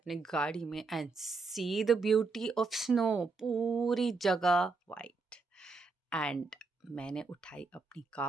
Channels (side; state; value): left; quieter; 4.1 dB